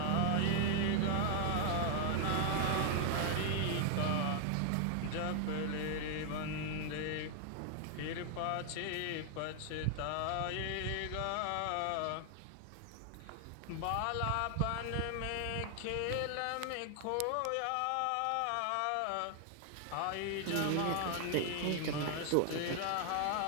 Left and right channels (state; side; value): different; both; correlation 0.00